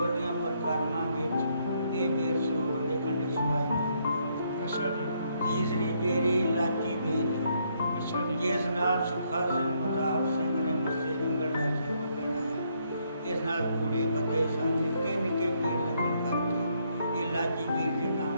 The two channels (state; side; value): inverted; both; correlation -0.73